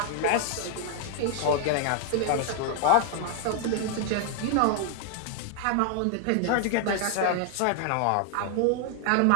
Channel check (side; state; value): both; different; correlation 0.00